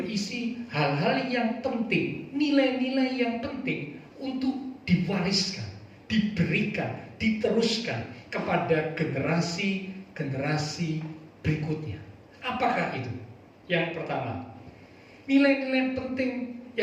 hal-hal yang penting, nilai-nilai yang penting untuk diwariskan, diberikan, diteruskan kepada generasi berikutnya. Apakah itu? Yang pertama, nilai-nilai penting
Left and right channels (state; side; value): identical; both; correlation 1.00